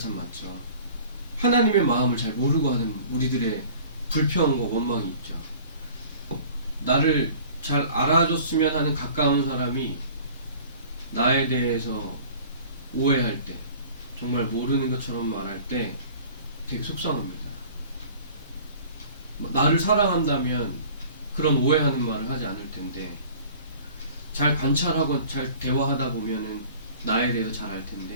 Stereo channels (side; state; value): both; inverted; correlation -0.46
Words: 많죠. 하나님의 마음을 잘 모르고 하는 우리들의 불평과 원망이 있죠. 나를 잘 알아줬으면 하는 가까운 사람이 나에 대해서 오해할 때, 정말 모르는 것처럼 말할 때 되게 속상합니다. 나를 사랑한다면 그런 오해하는 말을 하지 않을 텐데, 잘 관찰하고 잘 대화하다 보면은 나에 대해서 잘 알